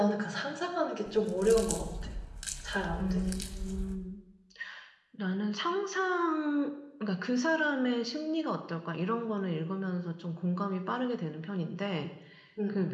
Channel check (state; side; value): identical; both; correlation 1.00